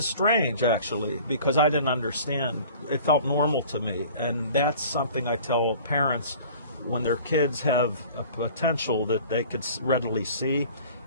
strange, actually, because I didn't understand. It felt normal to me, and that's something I tell parents when their kids have a potential that they could readily see,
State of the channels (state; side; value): inverted; both; correlation -0.46